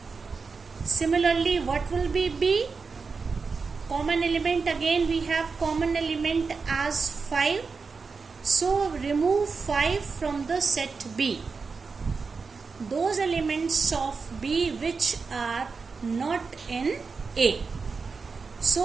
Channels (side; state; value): left; quieter; 4.8 dB